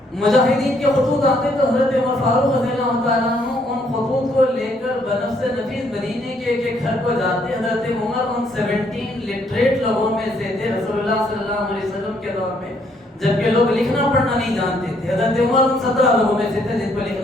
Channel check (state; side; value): normal; both; correlation 0.69